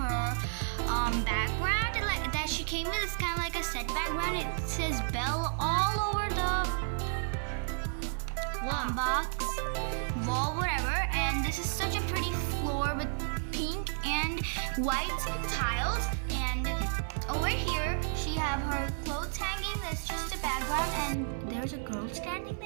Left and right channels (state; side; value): silent; left; 56 dB below the other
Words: background that she came with. It's kind of like a set background. It says Belle all over the box, wall, whatever. And this is such a pretty floor with pink and white tiles. And over here, she have her clothes hanging. That's just a background. And there's a girl standing